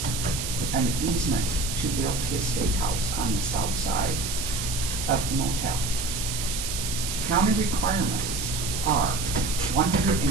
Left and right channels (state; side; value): noise; right; hiss, 4 dB below the sound